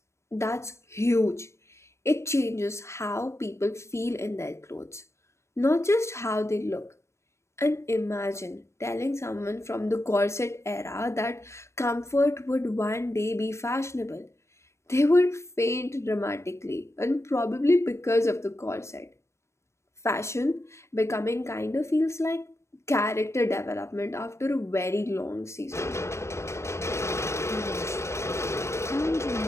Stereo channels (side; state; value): right; late; 0.13 ms